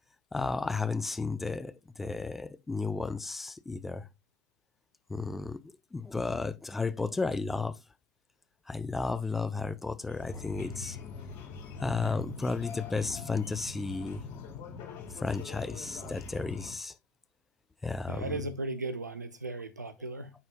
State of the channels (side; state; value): right; quieter; 3.1 dB